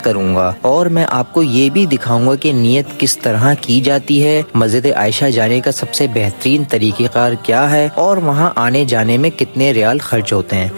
करूंगा और मैं आपको ये भी दिखाऊंगा कि नियत किस तरह की जाती है, मस्जिद आयशा जाने का सबसे बेहतरीन तरीक़ेकार क्या है और वहाँ आने जाने में कितने रियाल खर्च होते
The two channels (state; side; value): inverted; both; correlation -1.00